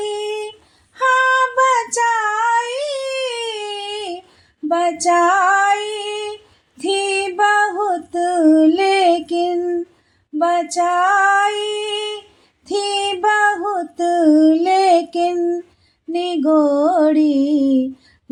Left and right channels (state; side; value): identical; both; correlation 1.00